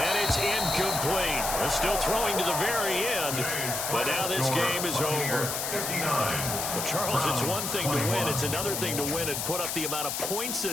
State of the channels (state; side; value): noise; left; hiss, 2 dB below the sound